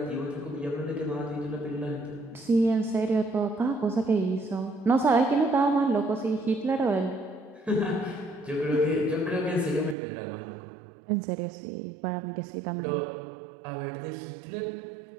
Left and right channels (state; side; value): drops out; left; at 10.0 s